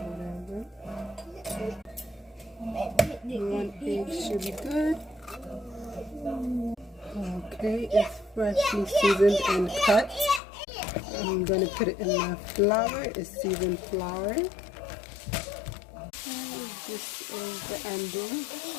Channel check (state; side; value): drops out; right; at 10.4 s